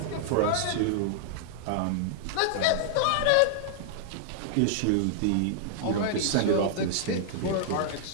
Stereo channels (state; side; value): different; both; correlation -0.01